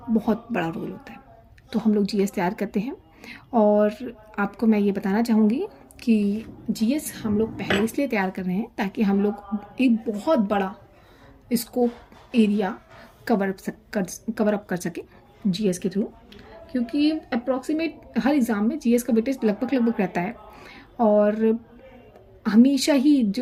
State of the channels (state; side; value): identical; both; correlation 1.00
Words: बहुत बड़ा रोल होता है। तो हम लोग जीएस तैयार करते हैं और आपको मैं ये बताना चाहूँगी कि जीएस हम लोग पहले इसलिए तैयार कर रहे हैं ताकि हम लोग एक बहुत बड़ा स्कोप एरिया कवर अप कर सके जीएस के थ्रू, क्योंकि अप्रॉक्सीमेट हर एग्ज़ाम में जीएस का वेटेज लगभग रहता है और हमेशा ही